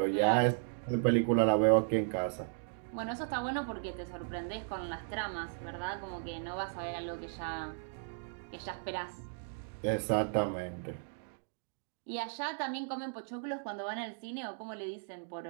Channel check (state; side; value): silent; left; digital silence